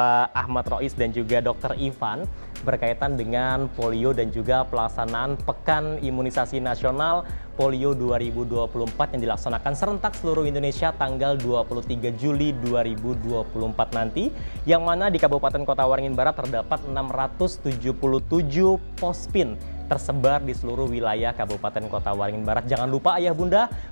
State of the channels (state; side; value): inverted; both; correlation -1.00